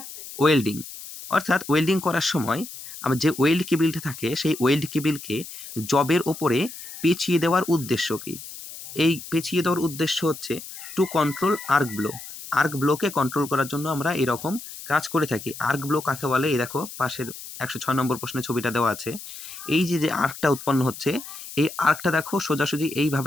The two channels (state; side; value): noise; left; hiss, 13 dB below the sound